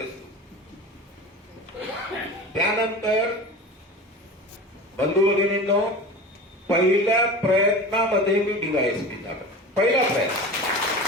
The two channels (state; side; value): normal; both; correlation 0.33